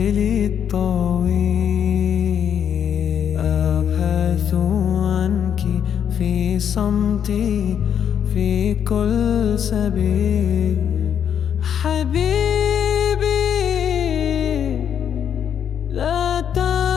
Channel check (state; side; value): quieter; right; 8.6 dB